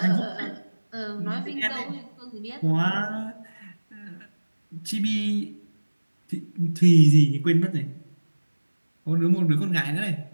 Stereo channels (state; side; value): inverted; both; correlation -1.00